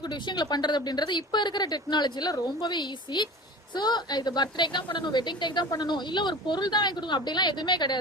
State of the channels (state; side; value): normal; both; correlation 0.37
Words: விஷயங்களை பண்ணுறது அப்படின்றது இப்போ இருக்கிற டெக்னாலஜியில் ரொம்பவே ஈஸி. ஸோ இது பர்த்டேக்கு தான் பண்ணணும், வெட்டிங் டேக்கு தான் பண்ணணும், இல்லை ஒரு பொருள் தான் வாங்கி கொடுக்கணும் அப்படிலாம் எதுவுமே